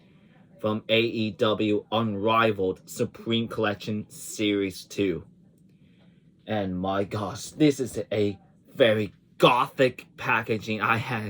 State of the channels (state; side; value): identical; both; correlation 1.00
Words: from AEW Unrivaled Supreme Collection Series 2. And my gosh, this is a very gothic packaging I had